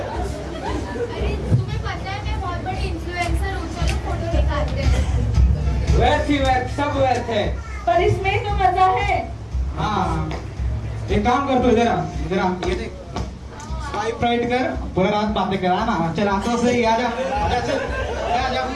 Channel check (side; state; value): both; identical; correlation 1.00